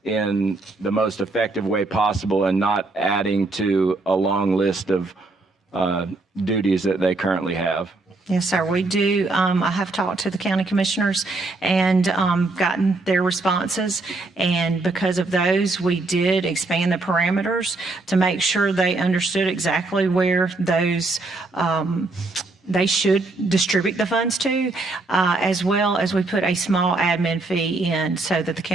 in the most effective way possible and not adding to a long list of duties that they currently have. Yes, sir, we do. I have talked to the county commissioners and gotten their responses. And because of those, we did expand the parameters to make sure they understood exactly where those they should distribute the funds to, as well as we put a small admin fee in so that the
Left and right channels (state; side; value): quieter; left; 3.3 dB